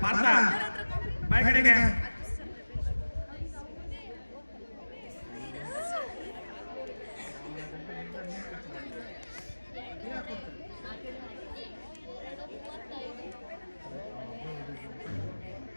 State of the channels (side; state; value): both; inverted; correlation -1.00